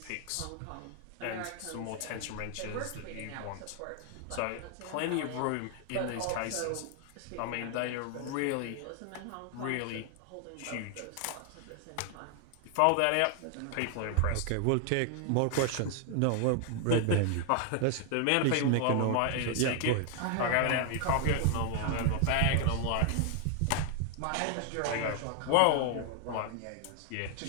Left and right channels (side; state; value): both; different; correlation 0.00